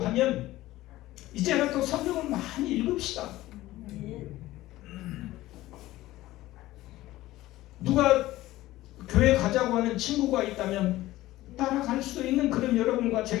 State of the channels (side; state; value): right; quieter; 16.5 dB